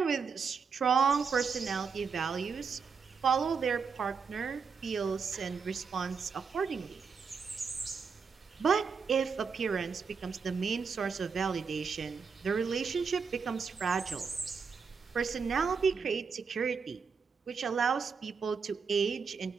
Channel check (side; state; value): left; quieter; 5.6 dB